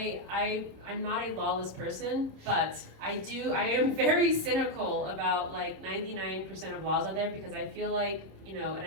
not a lawless person, but I am very cynical about like 99% of laws out there, because I feel like, you know, and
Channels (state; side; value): late; left; 26 ms